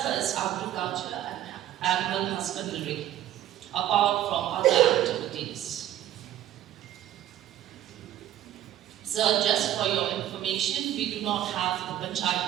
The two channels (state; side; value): quieter; left; 12.5 dB